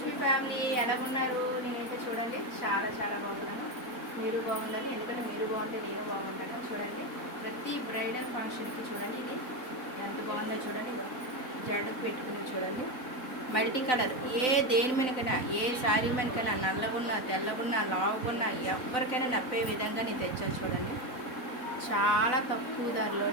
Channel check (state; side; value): late; right; 4.2 ms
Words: family, ఎలా ఉన్నారు? నేనైతే చూడండి చాలా చాలా బాగున్నాను. మీరు బాగుండాలి, ఎందుకంటే మీరు బాగుంటే నేను బాగుంటాను. చూడండి, ప్రతి బ్రైడల్ ఫంక్షన్కి చూడండి ఇది ఎంత బాగుందో చూడండి. జడకు పెట్టుకుని చూడండి, మల్టీ కలర్ దేని మీదకైనా, ఏ శారీ మీదకైనా, నల్లగున్నా తెల్లగున్నా లావుగున్నా ఎవరికైనా నప్పే విధంగా నేను తెచ్చాను. చూడండి, చాలా తక్కువ